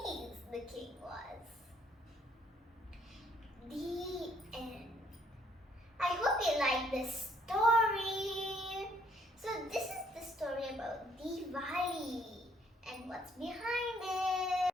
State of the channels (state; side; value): normal; both; correlation 0.66